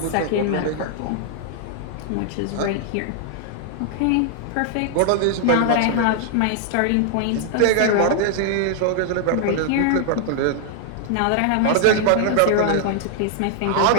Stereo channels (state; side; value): different; both; correlation 0.00